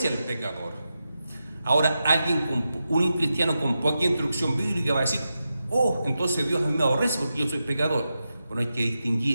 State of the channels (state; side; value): inverted; both; correlation -0.90